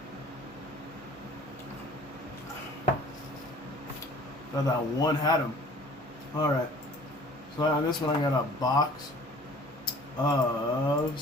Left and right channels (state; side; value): normal; both; correlation 0.49